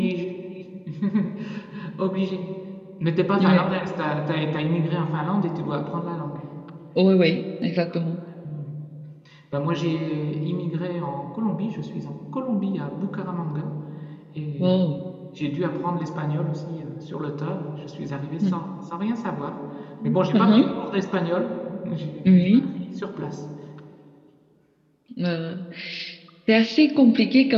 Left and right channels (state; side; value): identical; both; correlation 1.00